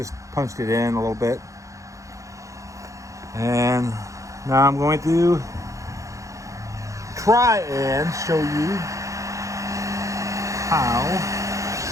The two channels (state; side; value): late; left; 0.15 ms